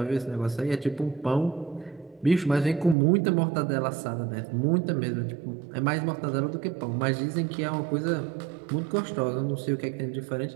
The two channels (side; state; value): left; drops out; at 3.0 s